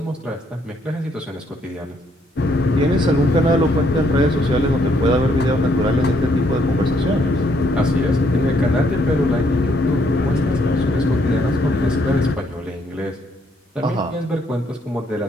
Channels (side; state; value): both; normal; correlation 0.70